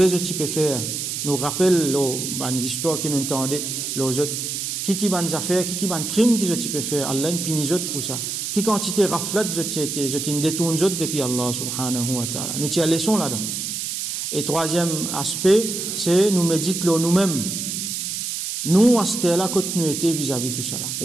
je peux faire. Nous rappelle, ban histoire qui nous entendait, les autres, qui ban affaires, qui ban crime qui je peux faire. Allah ne punit autres pour ça. Qui quantité raflat, je t'ai détourne autres depuis Allah subhanahu wa ta'ala. Nous tirons leçon là-dedans. Et troisième aspect, c'est nous méditons nous-mêmes. Nous, à ce là quand nous étions vis-à-vis de tout ça là.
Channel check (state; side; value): noise; right; hiss, 3 dB below the sound